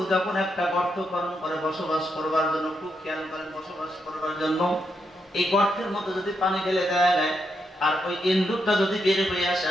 যখন একটা গর্ত খনন করে বসবাস করবার জন্য, খুব খেয়াল করেন, বসবাস করবার জন্য এই গর্তের মধ্যে যদি পানি ঢেলে দেওয়া যায় আর ওই ইন্দুরটা যদি বের হয়ে আসে,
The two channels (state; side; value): normal; both; correlation 0.81